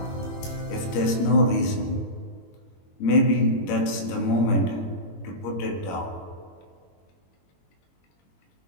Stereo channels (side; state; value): right; late; 21 ms